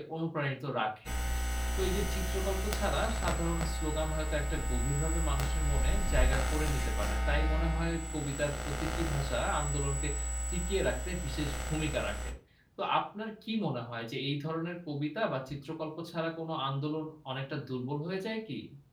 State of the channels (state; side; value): identical; both; correlation 1.00